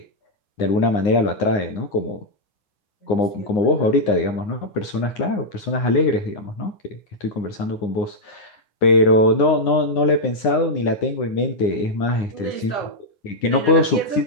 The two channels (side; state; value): right; late; 9.7 ms